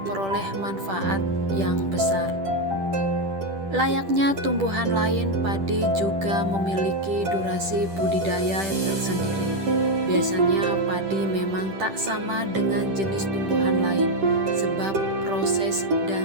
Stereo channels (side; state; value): left; late; 10 ms